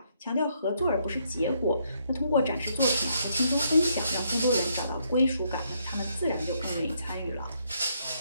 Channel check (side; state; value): both; inverted; correlation -0.73